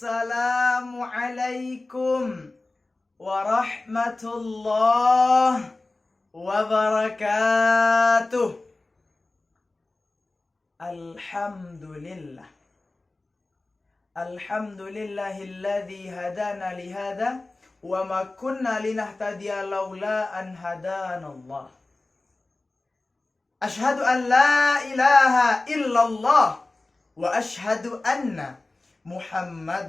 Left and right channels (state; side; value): quieter; right; 3.1 dB